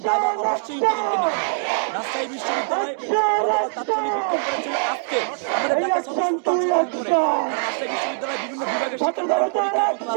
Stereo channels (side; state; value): left; silent; digital silence